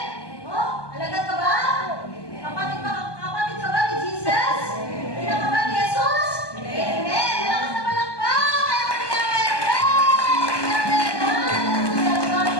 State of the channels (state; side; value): late; right; 1.2 ms